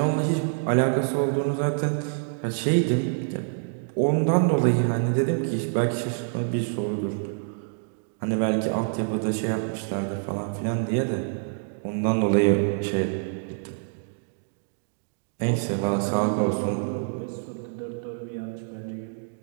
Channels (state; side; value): silent; left; digital silence